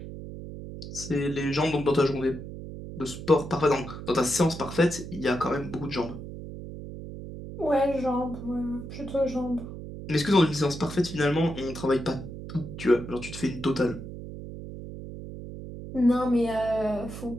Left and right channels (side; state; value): right; noise; hum, 10 dB below the sound